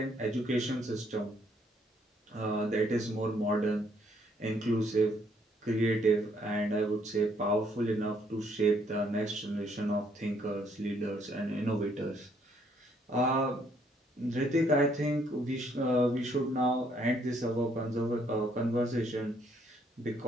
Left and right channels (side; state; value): both; normal; correlation 0.68